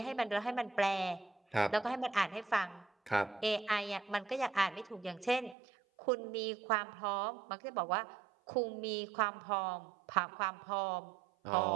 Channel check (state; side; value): drops out; left; at 5.6 s